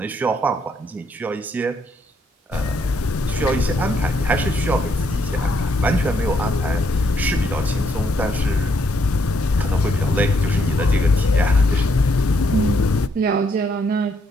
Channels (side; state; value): both; normal; correlation 0.73